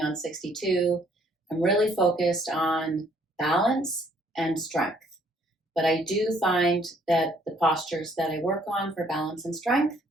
on 62, I'm really focused on balance and strength. But I do find that the postures that I work on for balance and strength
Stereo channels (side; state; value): both; normal; correlation 0.64